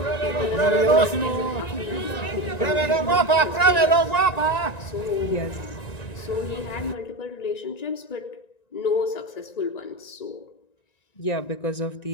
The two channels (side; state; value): right; late; 1.9 ms